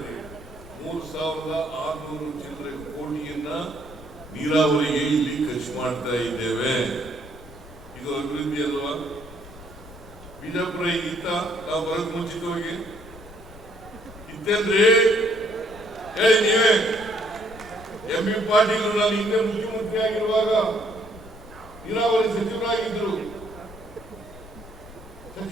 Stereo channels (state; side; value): noise; left; rumble, 18 dB below the sound